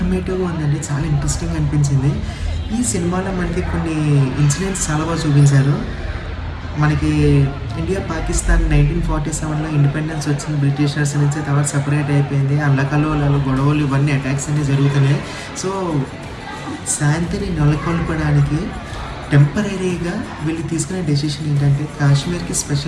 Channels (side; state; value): both; identical; correlation 1.00